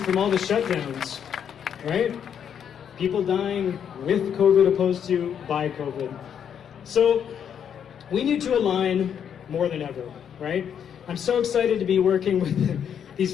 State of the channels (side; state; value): right; quieter; 8.4 dB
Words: all the shutdowns, right? People dying with COVID opposed to by COVID. So we need to align more than ever, right? I'm so excited to be working with